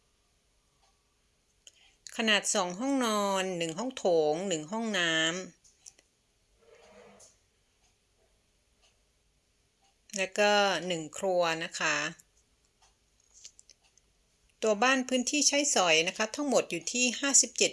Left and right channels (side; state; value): both; identical; correlation 1.00